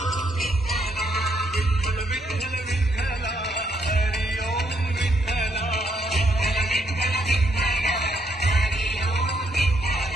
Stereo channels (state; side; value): normal; both; correlation 0.74